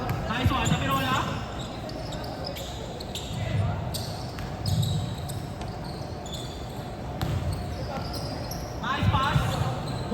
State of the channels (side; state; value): both; identical; correlation 1.00